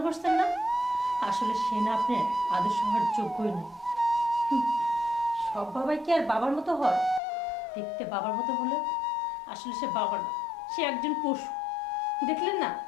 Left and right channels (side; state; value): right; drops out; at 7.2 s